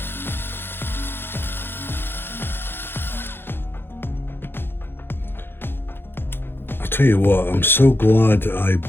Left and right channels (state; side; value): late; right; 0.10 ms